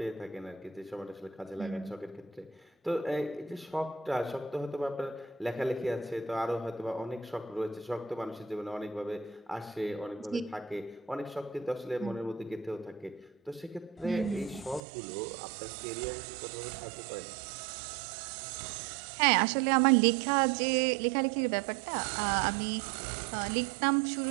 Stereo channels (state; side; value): drops out; left; at 14.8 s